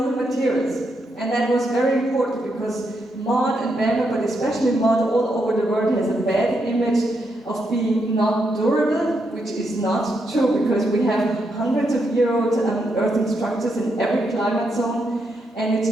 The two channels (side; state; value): both; normal; correlation 0.81